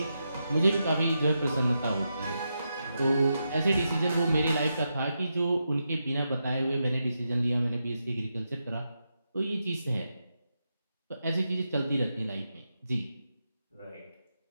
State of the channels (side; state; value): both; inverted; correlation -0.86